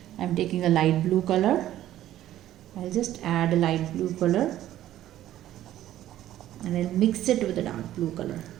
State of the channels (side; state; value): left; quieter; 13.1 dB